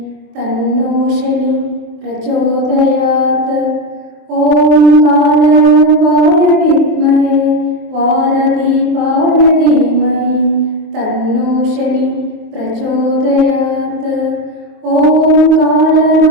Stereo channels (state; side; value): late; left; 24 ms